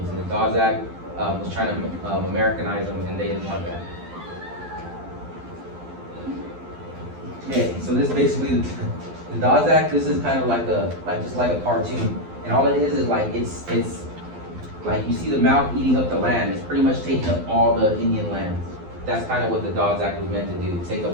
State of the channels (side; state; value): left; late; 12 ms